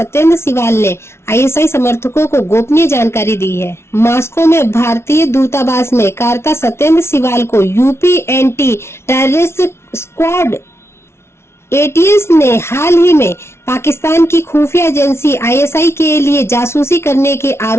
सिवाल ने आईएसआई समर्थकों को गोपनीय जानकारी दी है। मॉस्को में भारतीय दूतावास में कार्यरत सत्येंद्र सिवाल को UP anti terrorist squad ATS ने हाल ही में पाकिस्तान की खुफिया एजेंसी आईएसआई के लिए जासूसी करने के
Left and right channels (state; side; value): late; right; 0.12 ms